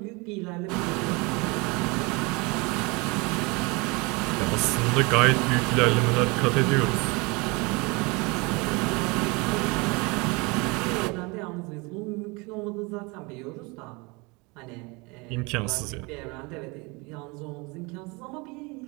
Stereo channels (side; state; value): left; quieter; 27.2 dB